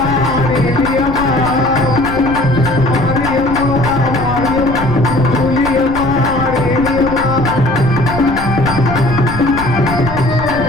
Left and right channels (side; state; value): left; noise; rumble, 11 dB below the sound